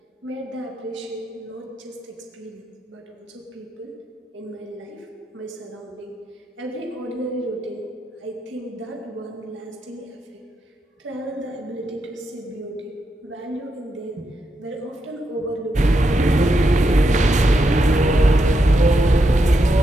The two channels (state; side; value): normal; both; correlation 0.83